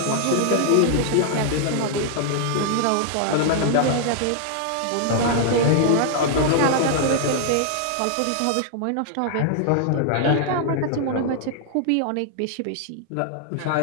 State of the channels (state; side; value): different; both; correlation -0.01